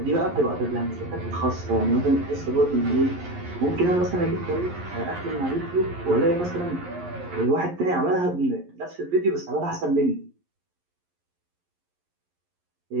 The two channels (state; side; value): late; left; 11 ms